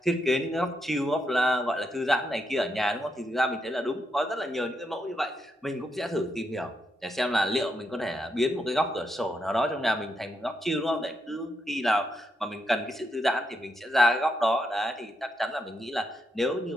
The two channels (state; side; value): normal; both; correlation 0.81